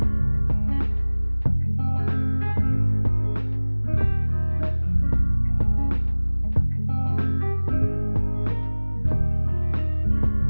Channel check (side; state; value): both; inverted; correlation -1.00